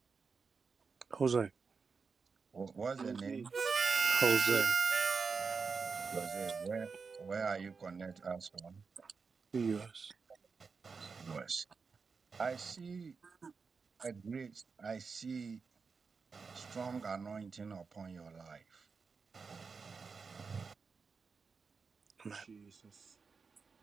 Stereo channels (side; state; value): left; quieter; 5.1 dB